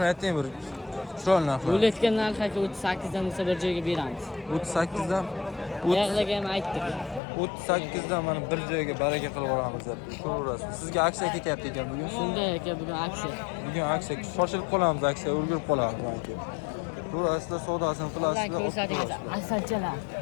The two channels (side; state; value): right; drops out; at 7.2 s